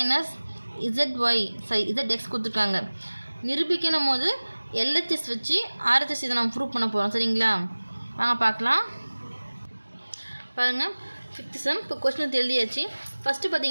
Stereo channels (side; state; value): both; inverted; correlation -1.00